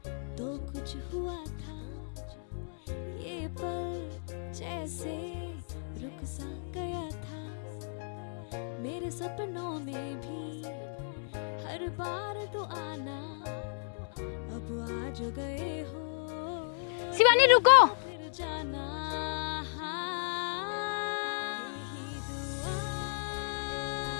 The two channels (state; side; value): silent; right; digital silence